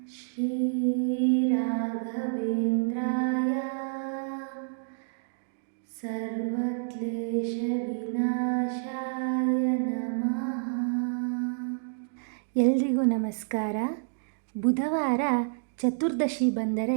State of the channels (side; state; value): left; silent; digital silence